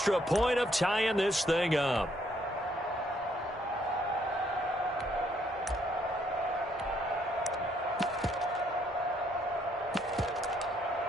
point of tying this thing up.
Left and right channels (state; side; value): normal; both; correlation 0.69